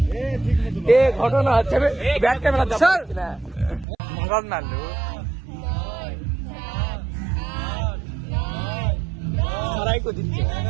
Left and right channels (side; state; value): left; drops out; at 3.9 s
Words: এ ঘটনা হচ্ছে ব্যাক ক্যামেরা দাও না মরদ না লো সারাই কো দিচ্ছে